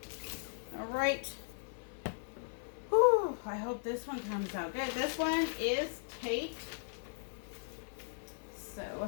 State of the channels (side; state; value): right; silent; 53 dB below the other